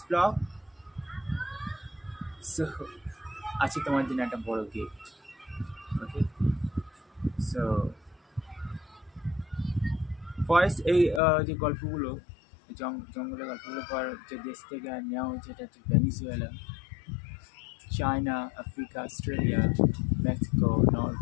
blog, so আছে তোমার জন্য একটা বড় গিফট। ওকে, সো ফার্স্ট এই যে গল্পগুলো, জঙ্গলের গল্পগুলো পর যে দেশ থেকে নেওয়া হয়েছে, এটা হচ্ছে Venezuela, China, Africa, Australia, Mexico,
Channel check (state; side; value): drops out; right; at 11.2 s